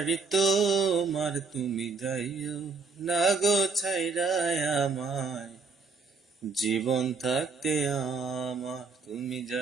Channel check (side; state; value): left; quieter; 4.6 dB